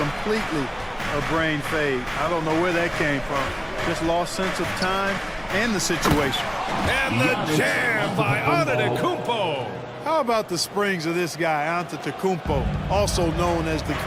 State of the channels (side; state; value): both; identical; correlation 1.00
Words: a brain fade. I don't know where that came from. Just lost sense of time and the situation. And the jam by Antetokounmpo. How about the springs of this guy, Antetokounmpo, also known as the